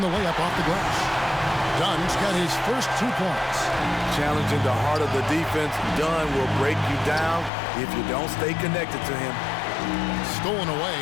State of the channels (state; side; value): drops out; right; at 7.5 s